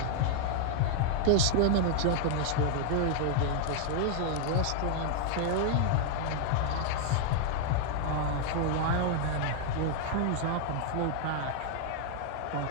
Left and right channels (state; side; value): different; both; correlation 0.00